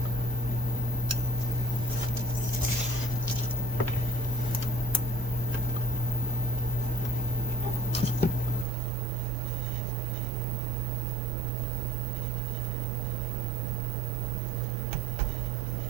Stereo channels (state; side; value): drops out; left; at 8.7 s